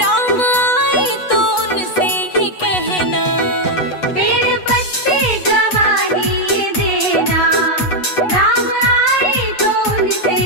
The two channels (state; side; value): late; right; 8.2 ms